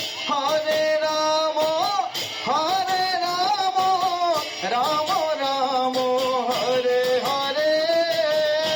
Hare Ram Ram Ram Hare Hare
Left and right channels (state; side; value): identical; both; correlation 1.00